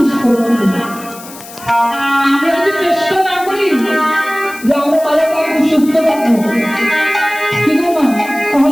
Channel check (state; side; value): noise; left; hiss, 17 dB below the sound